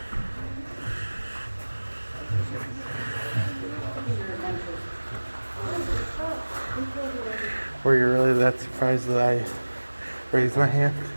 Were you really that surprised that I raised my hand?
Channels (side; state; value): both; inverted; correlation -1.00